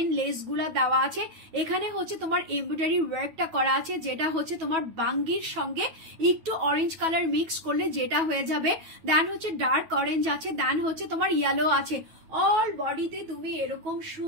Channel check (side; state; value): left; late; 9.2 ms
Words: লেস গুলা দেওয়া আছে এখানে হচ্ছে তোমার এমব্রয়ডারি ওয়ার্কটা করা আছে যেটা হচ্ছে তোমার বাঙ্গির সঙ্গে একটু অরেঞ্জ কালার মিক্স করলে যেটা হয়ে যাবে দেন হচ্ছে ডার্ক অরেঞ্জ আছে দেন হচ্ছে তোমার ইয়েলো আছে অল বডিতে তুমি এরকম